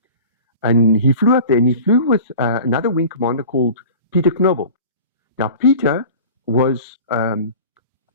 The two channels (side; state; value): both; inverted; correlation -0.39